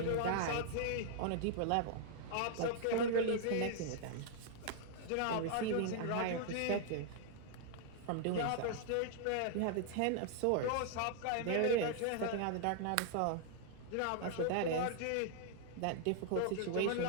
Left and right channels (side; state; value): both; different; correlation 0.00